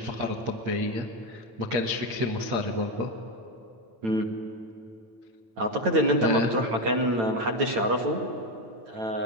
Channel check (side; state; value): left; late; 9.0 ms